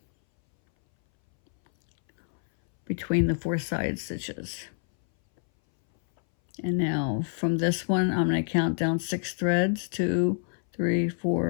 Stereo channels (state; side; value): silent; right; 60 dB below the other